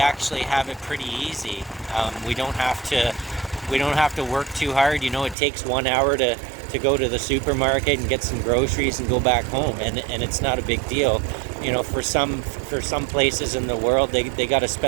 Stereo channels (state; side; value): drops out; left; at 5.4 s